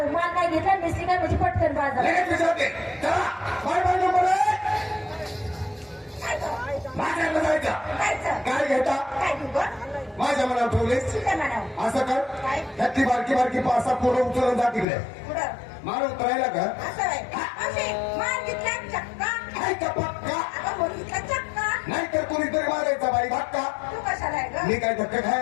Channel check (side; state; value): right; drops out; at 14.9 s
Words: काय घेतला मिस्त्री काय म्हणजे पटकन बाजार. लगेच विचारते, चला काय नंबर आहे? माझ्याकडे जायचं. काय घेता? काय घेऊ माझ्या मनावर ठेवलेस. म्हणावं असं कर, काय? त्यातली बारकी बारकी 5-6 पोरं उचलून जा तिकडे. पुढं मार उतरायला का? असं आहे. असे मार घेतला चक्का, काय का पक्का? अगं मुलीचा चक्का. नाही तर कोणीतरी मारायचा बाई धक्का. तू कशाला आहे ग? मी काय धक्का